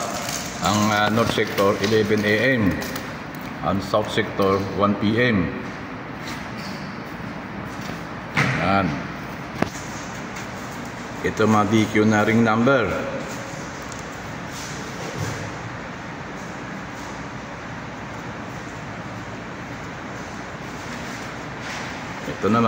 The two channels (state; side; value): identical; both; correlation 1.00